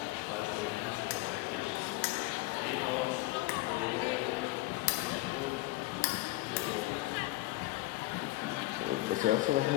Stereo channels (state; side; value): quieter; right; 19.1 dB